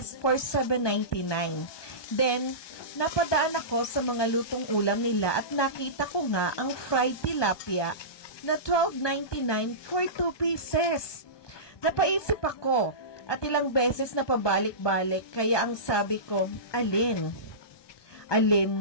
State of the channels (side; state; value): right; late; 1.2 ms